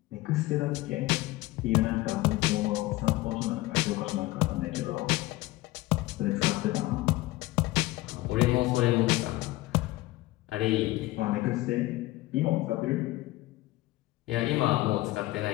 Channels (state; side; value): quieter; right; 18.6 dB